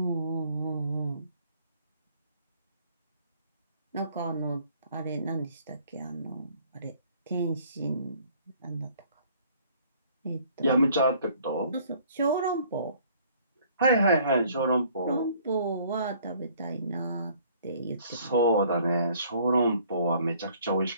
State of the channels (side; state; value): both; inverted; correlation -0.58